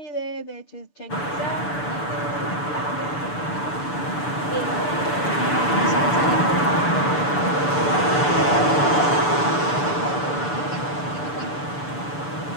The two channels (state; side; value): late; right; 6.9 ms